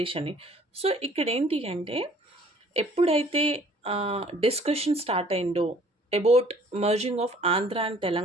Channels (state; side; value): normal; both; correlation 0.56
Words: అని. సో ఇక్కడ ఏంటి అంటే, ఎప్పుడైతే డిస్కషన్ స్టార్ట్ అయిందో about merging of Andhra and